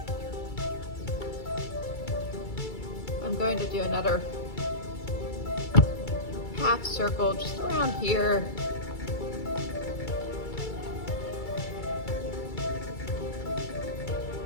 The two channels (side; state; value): right; late; 2.3 ms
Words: I'm going to do another half circle just around here.